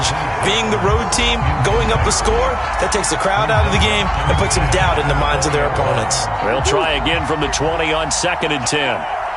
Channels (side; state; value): both; identical; correlation 1.00